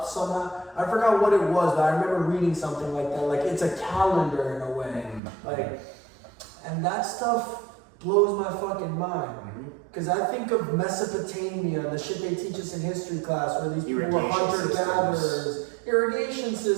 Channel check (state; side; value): drops out; left; at 5.2 s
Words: somehow. I forgot what it was, but I remember reading something like that. Like it's a calendar in a way. Like, and that stuff blows my fucking mind. Because I think of Mesopotamia, the shit they teach us in history class, where these people were hunter-gatherers, irrigation